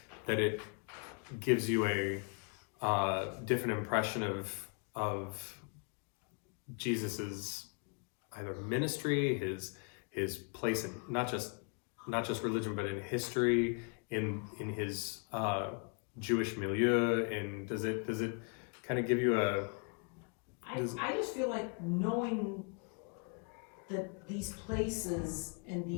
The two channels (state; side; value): quieter; right; 37.3 dB